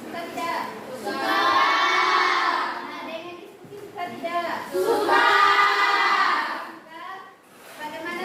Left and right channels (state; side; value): identical; both; correlation 1.00